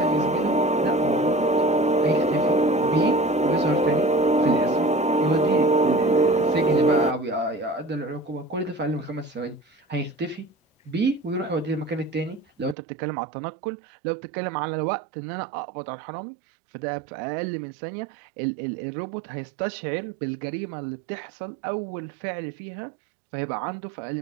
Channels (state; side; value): drops out; left; at 12.8 s